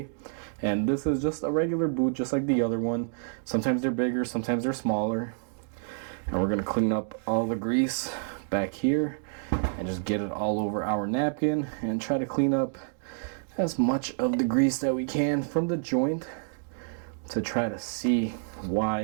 And this is just a regular boot, just like the other one. Sometimes they're bigger, sometimes they're smaller. And we're going to clean up all the grease back here and just get it all over our napkin and try to clean up as much of the grease that we can from the joint to try to see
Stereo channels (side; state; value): left; silent; digital silence